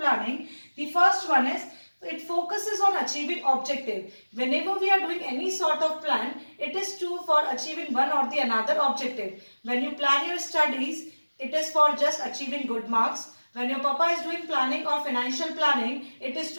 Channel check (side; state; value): both; inverted; correlation -1.00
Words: the first one is it focuses on achieving objective. Whenever we are doing any sort of plan, it is for achieving one or the another objective. When you plan your studies, it is for just achieving good marks. When your papa is doing planning or financial planning, it is